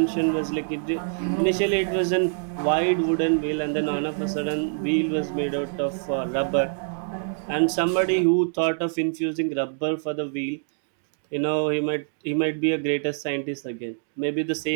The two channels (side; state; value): left; silent; digital silence